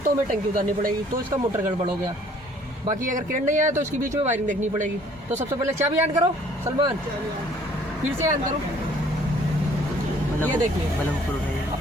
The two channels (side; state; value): both; normal; correlation 0.58